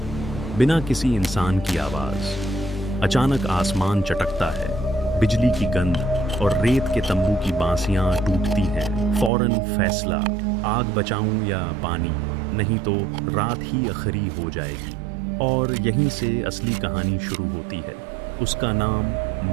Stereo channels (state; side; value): drops out; left; at 9.3 s